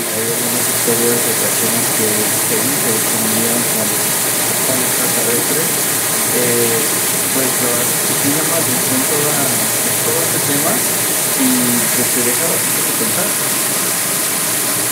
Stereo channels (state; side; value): identical; both; correlation 1.00